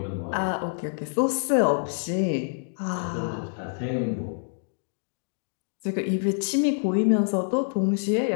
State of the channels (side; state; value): right; silent; digital silence